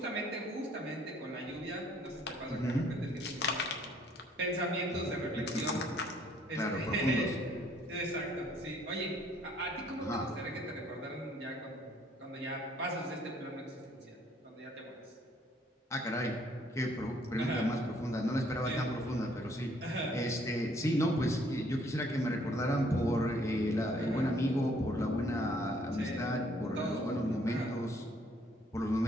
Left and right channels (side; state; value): both; normal; correlation 0.63